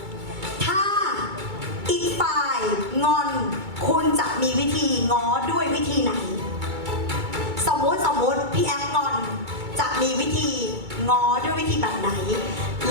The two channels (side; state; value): left; late; 2.2 ms